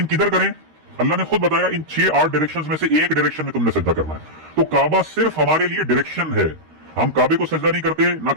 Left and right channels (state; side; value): late; left; 13 ms